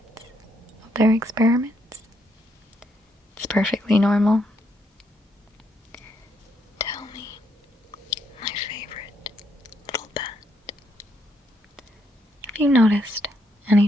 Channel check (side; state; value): both; normal; correlation 0.75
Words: of their experiments. It's perfectly normal. Tell me, my favorite little pet, have you noticed any